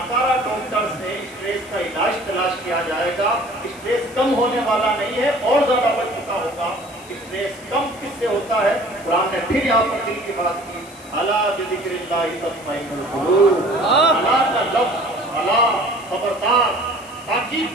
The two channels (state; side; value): noise; left; hiss, 21 dB below the sound